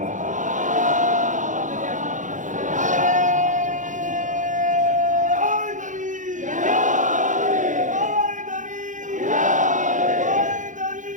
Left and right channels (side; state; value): left; late; 0.37 ms